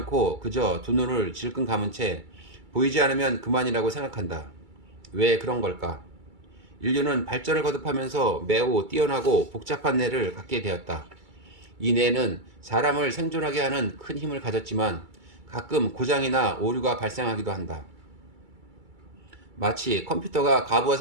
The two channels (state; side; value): late; left; 2.3 ms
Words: 그저 두 눈을 질끈 감은 채 보이지 않으면 그만이라고 생각한다. 왜 그런 걸까? 인류는 발전을 거듭하면서 매우 뛰어나고 복잡한 뇌를 갖게 되었다. 이 뇌는 사람을 생존하게 하는 큰 힘을 가졌지만 가끔 고장이나 오류가 발생하기도 한다. 마치 컴퓨터가 과부하